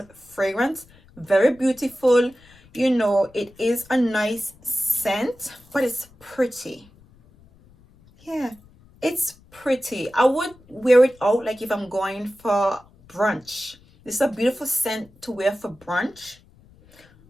fragrance. Very beautiful. You know, it is a nice scent, but it's pretty. Yeah. It's pretty. I would wear it out like if I'm going for brunch. This is a beautiful scent to wear for brunch.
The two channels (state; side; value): noise; left; rumble, 27 dB below the sound